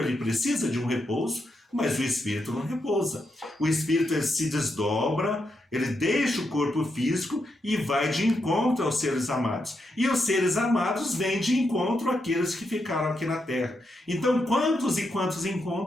ele precisa de um repouso, mas o espírito não repousa. O espírito, ele se desdobra, ele deixa o corpo físico e vai de encontro aos seres amados. E os seres amados vêm de encontro àqueles que ficaram aqui na Terra. Então, quantos e quantos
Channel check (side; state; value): both; normal; correlation 0.83